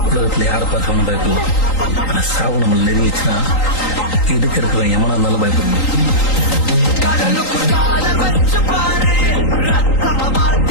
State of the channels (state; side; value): late; right; 3.8 ms